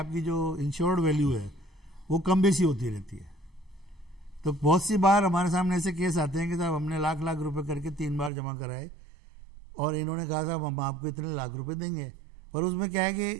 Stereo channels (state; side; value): drops out; left; at 8.3 s